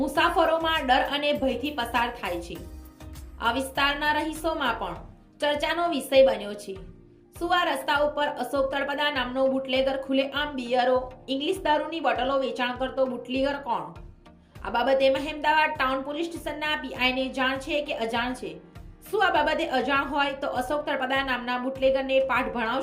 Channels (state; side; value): identical; both; correlation 1.00